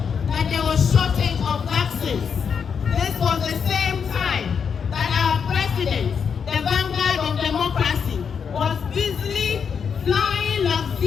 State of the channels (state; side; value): quieter; right; 6.7 dB